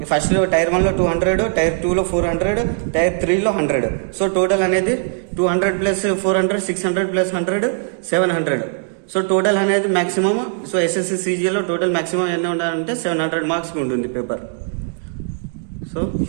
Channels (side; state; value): left; silent; digital silence